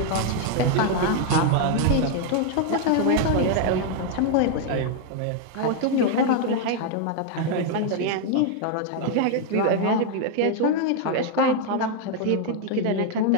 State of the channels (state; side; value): different; both; correlation 0.00